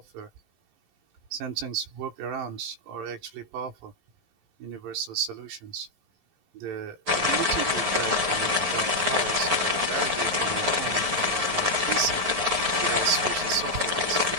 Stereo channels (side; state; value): left; late; 11 ms